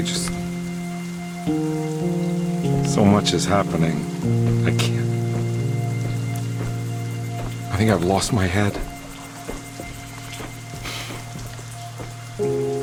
just... so much is happening. I can't... I think I've lost my head.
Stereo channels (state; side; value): identical; both; correlation 1.00